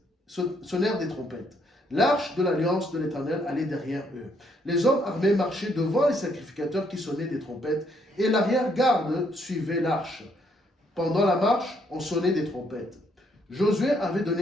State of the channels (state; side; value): normal; both; correlation 0.71